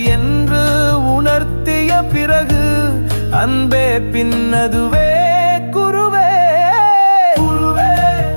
என்று உணர்த்திய பிறகு அன்பே பின்னதுவே குருவே. குருவே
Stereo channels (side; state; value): both; inverted; correlation -1.00